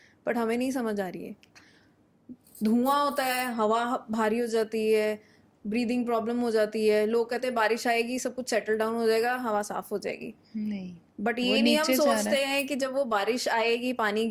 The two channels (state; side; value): identical; both; correlation 1.00